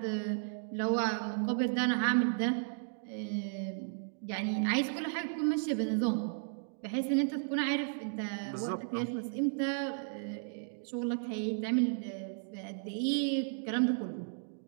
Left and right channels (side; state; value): left; silent; digital silence